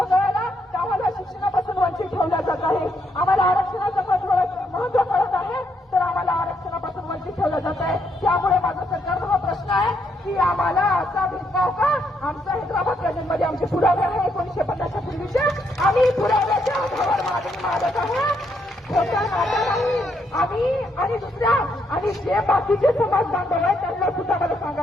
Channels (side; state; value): both; normal; correlation 0.76